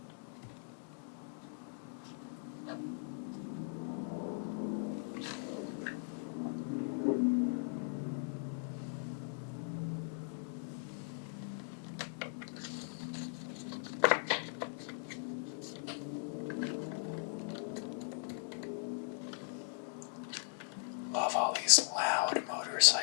Love all these loud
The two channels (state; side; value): silent; right; digital silence